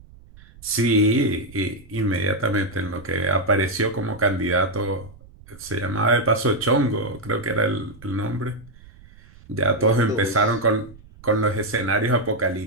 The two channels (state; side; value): noise; right; rumble, 23 dB below the sound